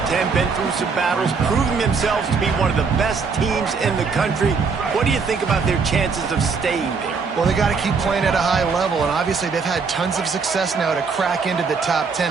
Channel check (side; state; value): left; quieter; 5.1 dB